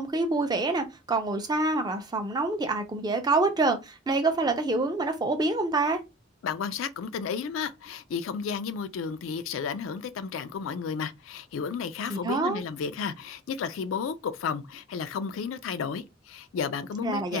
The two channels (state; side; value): normal; both; correlation 0.34